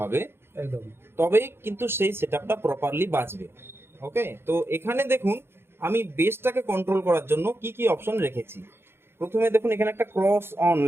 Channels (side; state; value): left; late; 0.11 ms